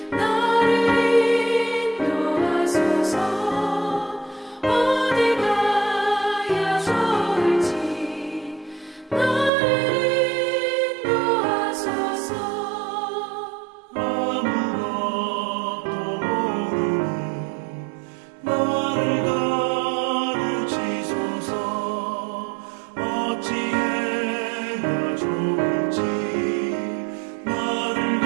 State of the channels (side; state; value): left; drops out; at 9.5 s